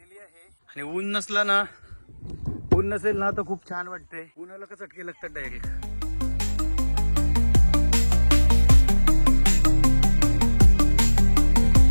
आहे. आणि ऊन नसला ना, ऊन नसेल ना तर खूप छान वाटतंय. उन्हाला का चटके लागतात डायरेक्ट.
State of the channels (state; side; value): inverted; both; correlation -1.00